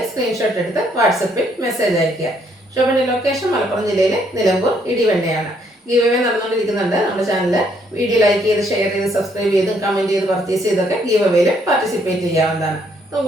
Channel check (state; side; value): normal; both; correlation 0.69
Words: സ്ക്രീൻഷോട്ട് എടുത്ത് വാട്സപ്പിൽ മെസ്സേജ് അയയ്ക്കുക. ഷോപ്പിൻ്റെ ലൊക്കേഷൻ മലപ്പുറം ജില്ലയിലെ നിലമ്പൂർ ഇടിവണ്ണയാണ്. ഗീവ് അവേ നടന്നുകൊണ്ടിരിക്കുന്നുണ്ട്. നമ്മുടെ ചാനൽ വീഡിയോ ലൈക്ക് ചെയ്ത് ഷെയർ ചെയ്ത് സബ്സ്ക്രൈബ് ചെയ്തും കമൻറ്റ് ചെയ്ത് പർച്ചേസ് ചെയ്തൊക്കെ ഗീവ് അവേയിൽ പാർട്ടിസിപ്പേറ്റ് ചെയ്യാവുന്നതാണ്.